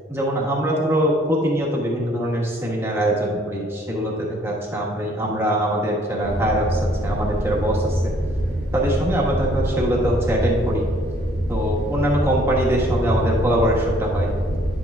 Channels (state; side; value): normal; both; correlation 0.61